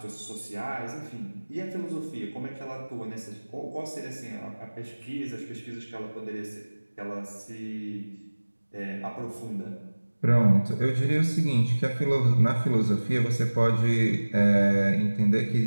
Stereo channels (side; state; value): both; inverted; correlation -1.00